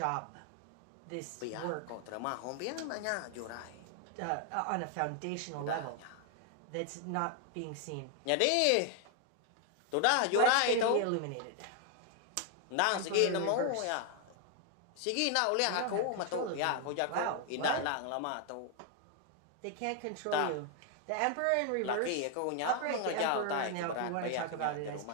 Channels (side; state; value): both; different; correlation 0.00